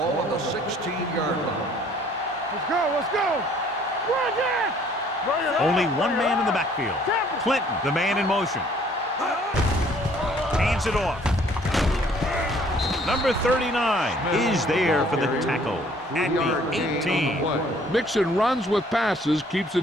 on the 16-yard line. Let's go. Run again. Only one man in the backfield. Clinton, the man in motion. Hands it off. Number 39 is there for the tackle at the 18. Mixing runs with passes keeps the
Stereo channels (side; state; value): both; normal; correlation 0.59